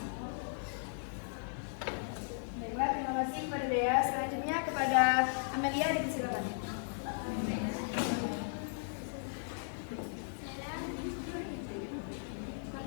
Baiklah, terima kasih kepada Dea. Selanjutnya kepada Amelia, dipersilakan.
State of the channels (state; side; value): silent; right; digital silence